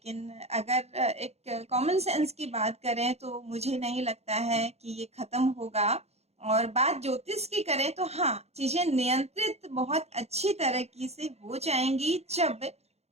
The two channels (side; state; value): left; late; 0.31 ms